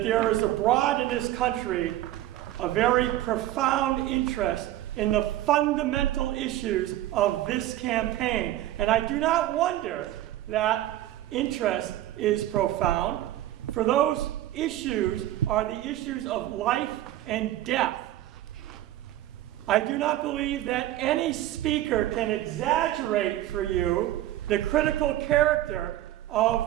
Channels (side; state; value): left; quieter; 14.1 dB